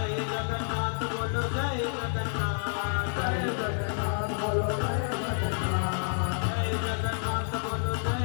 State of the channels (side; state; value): right; silent; 58 dB below the other